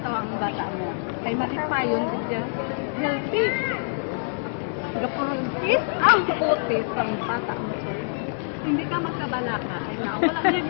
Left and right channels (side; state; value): right; silent; digital silence